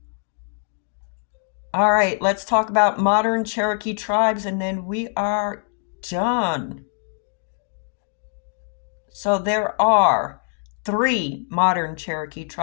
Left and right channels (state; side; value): silent; right; digital silence